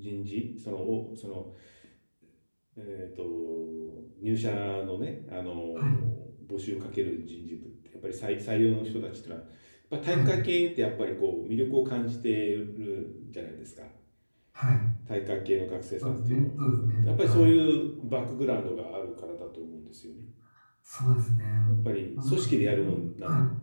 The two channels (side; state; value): both; inverted; correlation -1.00